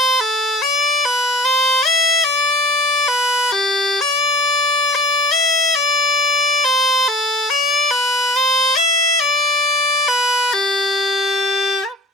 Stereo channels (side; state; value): both; normal; correlation 0.45